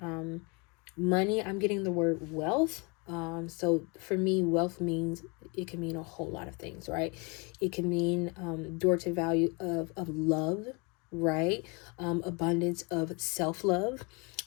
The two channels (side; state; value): right; quieter; 30.9 dB